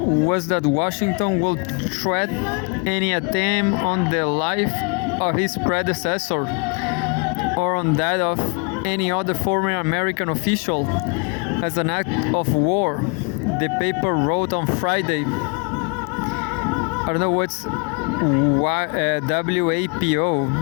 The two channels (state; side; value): quieter; right; 36.0 dB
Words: was that Washington will threat any attempt on the life of his predecessor or on that of any other former American official as an act of war, the paper wrote on Friday. I don't know what's WAPO